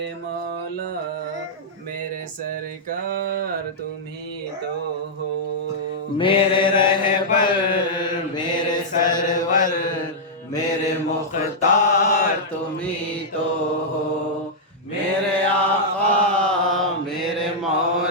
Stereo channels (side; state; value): both; normal; correlation -0.08